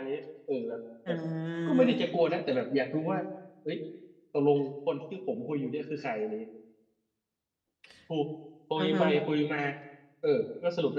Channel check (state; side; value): identical; both; correlation 1.00